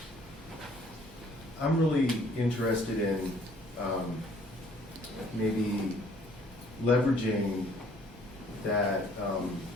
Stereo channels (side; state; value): both; normal; correlation 0.60